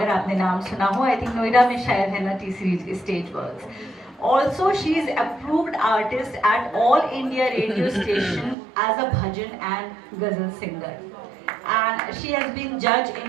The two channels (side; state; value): left; drops out; at 8.6 s